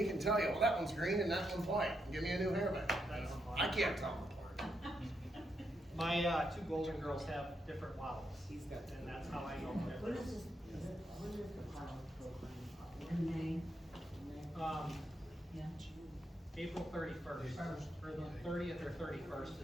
can tell you, well, that one's green and that one's white. Give me a new hairband. I can't tell them apart. My two golden girls have different models, and that's how I know the When difference. is this, when is the pilot program? In May? Yeah. April 31st, or the 30th or 31st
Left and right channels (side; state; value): both; normal; correlation 0.81